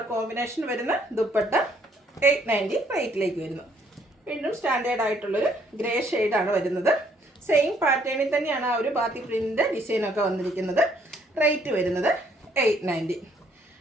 കോമ്പിനേഷൻ വരുന്ന ദുപ്പട്ട 890 റേറ്റിലേക്ക് വരുന്നു. വീണ്ടും സ്റ്റാൻഡേർഡ് ആയിട്ടുള്ളൊരു ഗ്രേ ഷെയ്ഡാണ് വരുന്നത്. സെയിം പാറ്റേണിൽ തന്നെയാണ് ആ ഒരു ബാത്തി പ്രിൻറ്റിൻ്റെ ഡിസൈനൊക്കെ വന്നിരിക്കുന്നത്. റേറ്റ് വരുന്നത് 890.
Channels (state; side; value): normal; both; correlation 0.66